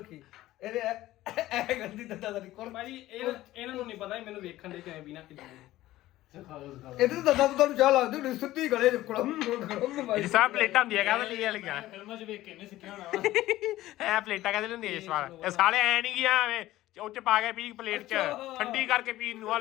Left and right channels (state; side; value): quieter; right; 15.8 dB